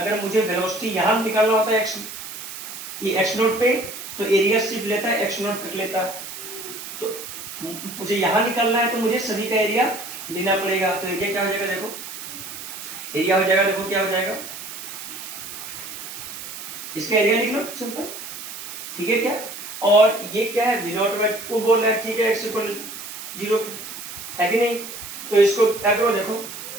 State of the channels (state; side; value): noise; right; hiss, 10 dB below the sound